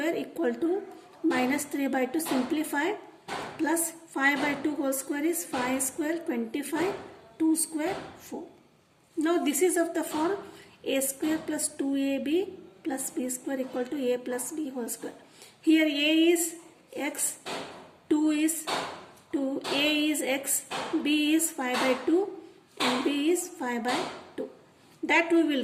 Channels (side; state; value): both; identical; correlation 1.00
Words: equal to minus 3 by 2 simplify plus 5 by 2 whole square is 5 square 25, 2 square 4. Now this is of the form a square plus 2ab plus b square equal to a plus b whole square. Here a is x, 2 is 2, a is x, b is 5 by 2 and b is 5 by 2. That we will